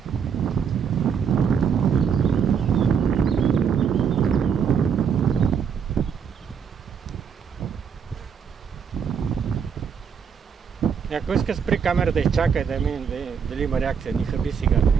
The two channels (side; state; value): left; quieter; 6.9 dB